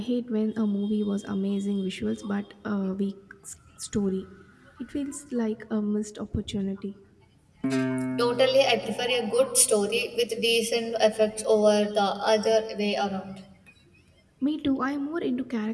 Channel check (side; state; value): both; identical; correlation 1.00